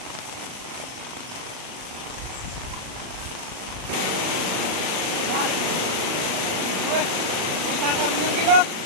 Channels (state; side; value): late; left; 38 ms